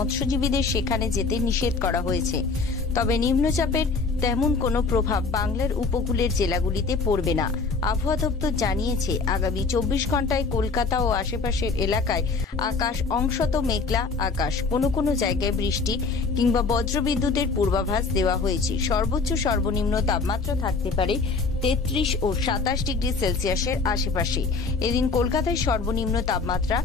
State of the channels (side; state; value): right; quieter; 4.3 dB